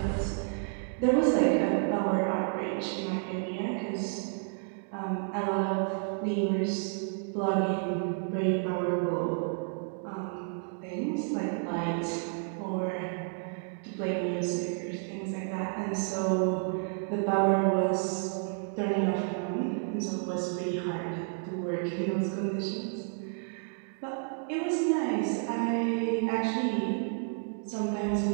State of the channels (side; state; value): left; silent; 57 dB below the other